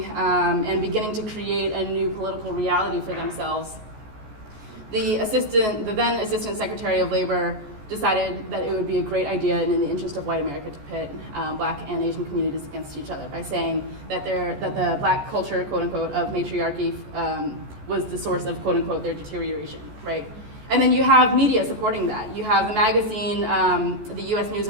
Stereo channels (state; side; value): late; left; 14 ms